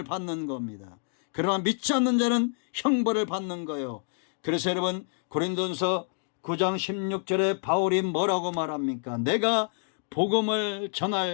받는 겁니다. 그러나 믿지 않는 자는 형벌을 받는 거예요. 그래서 여러분, 고린도전서 9장 16절에 바울이 뭐라고 말합니까? 내가 복음을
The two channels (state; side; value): silent; right; digital silence